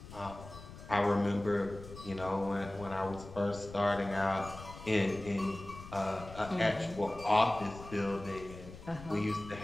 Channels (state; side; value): noise; left; rumble, 15 dB below the sound